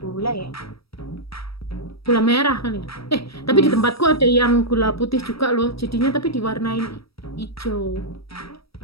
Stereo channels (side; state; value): right; late; 0.76 ms